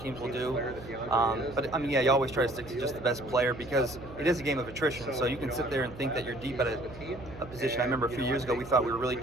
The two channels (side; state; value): right; noise; hum, 16 dB below the sound